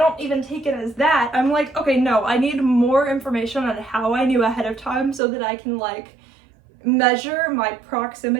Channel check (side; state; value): left; drops out; at 5.2 s